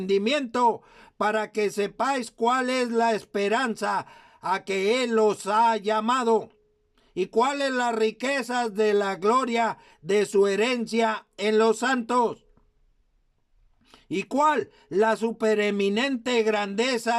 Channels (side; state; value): both; identical; correlation 1.00